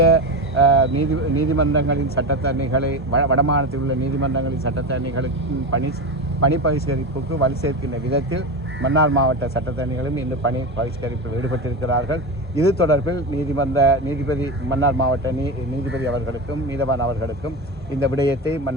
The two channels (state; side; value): normal; both; correlation 0.20